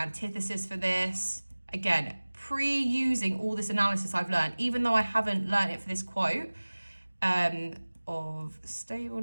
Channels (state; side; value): inverted; both; correlation -1.00